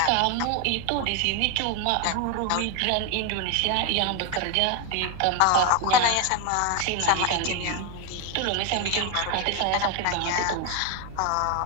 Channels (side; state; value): both; different; correlation 0.01